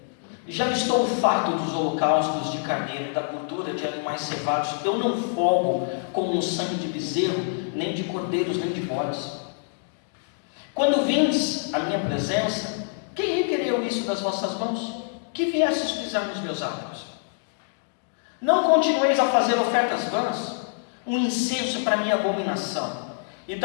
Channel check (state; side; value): silent; right; digital silence